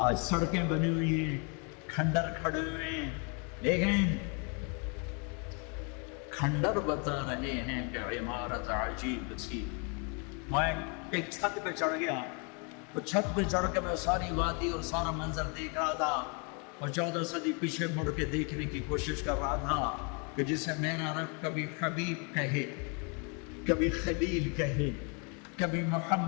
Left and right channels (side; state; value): right; quieter; 35.4 dB